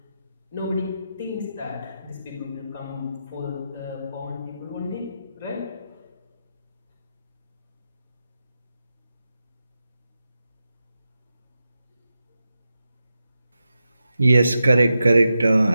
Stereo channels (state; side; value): inverted; both; correlation -0.89